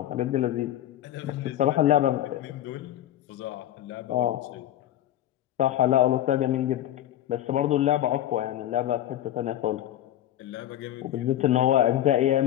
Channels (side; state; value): right; quieter; 12.7 dB